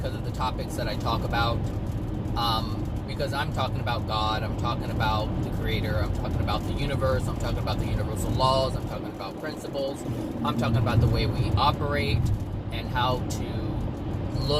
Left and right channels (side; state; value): both; identical; correlation 1.00